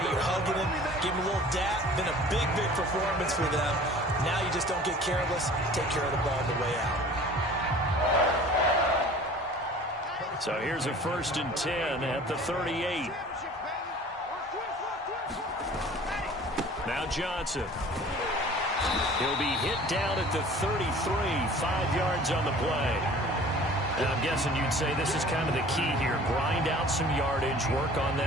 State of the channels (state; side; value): normal; both; correlation 0.46